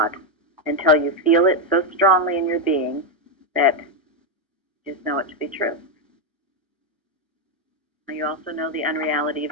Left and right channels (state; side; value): normal; both; correlation 0.04